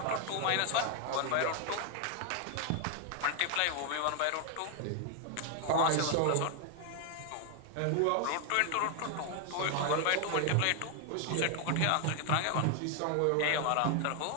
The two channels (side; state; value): both; different; correlation 0.00